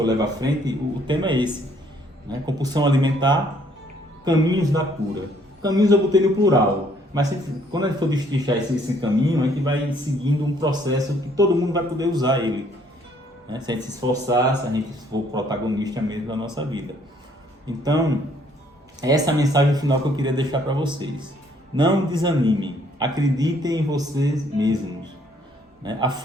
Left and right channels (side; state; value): both; normal; correlation 0.64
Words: levo à frente, o tema é esse, né, compulsão alimentar, caminhos da cura. Caminhos eu botei no plural, mas quando a gente for destrinchar esse caminho, a gente vai seguindo um processo que todo mundo vai poder usar ele, né, se a gente se esforçar, se a gente for protagonista mesmo da nossa vida. Então, essa é a mensagem final que eu queria deixar para vocês. Não desanimem, acreditem em vocês mesmos. Né? A